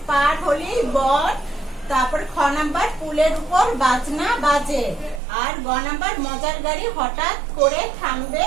পার হলি বন, তারপর খ নাম্বার পুলের উপর বাজনা বাজে, আর গ নাম্বার মজার গাড়ি হঠাৎ করে থামবে,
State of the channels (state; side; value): drops out; left; at 5.2 s